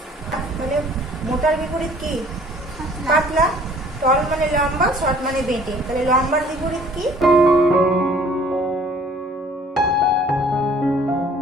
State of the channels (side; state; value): both; normal; correlation 0.54